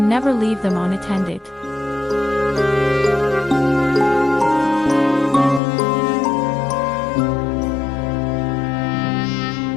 never leave them unattended.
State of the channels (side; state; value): right; drops out; at 5.6 s